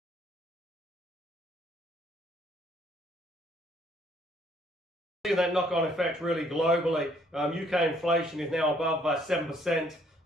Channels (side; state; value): both; normal; correlation 0.65